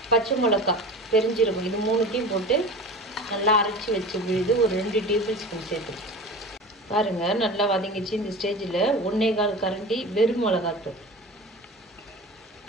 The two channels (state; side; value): normal; both; correlation 0.34